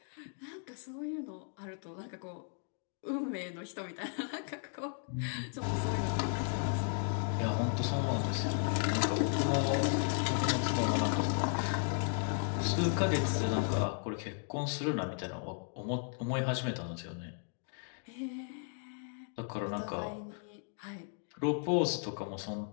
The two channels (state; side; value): silent; right; 54 dB below the other